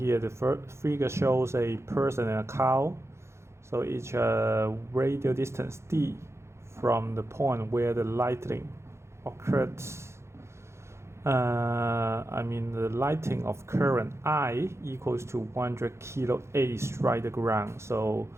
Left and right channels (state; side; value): late; left; 0.13 ms